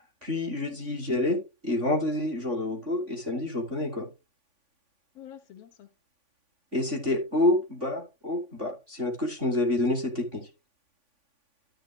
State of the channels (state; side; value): late; left; 3.5 ms